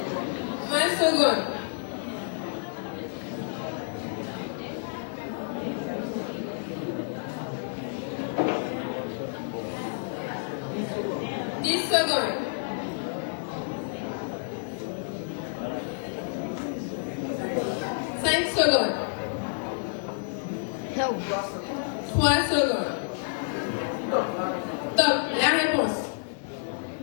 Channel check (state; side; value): silent; right; 57 dB below the other